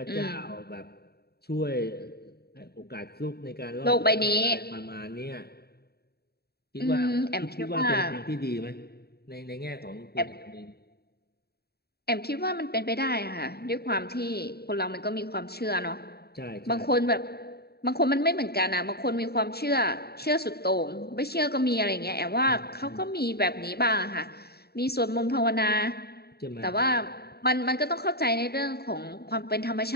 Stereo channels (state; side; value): late; right; 0.46 ms